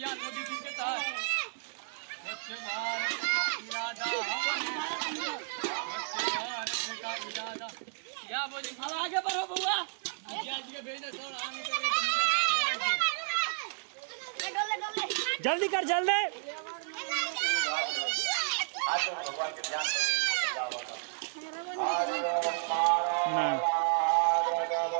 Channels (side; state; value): left; silent; digital silence